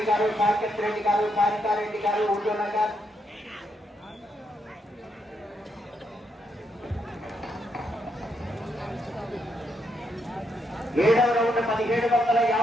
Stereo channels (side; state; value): both; normal; correlation 0.78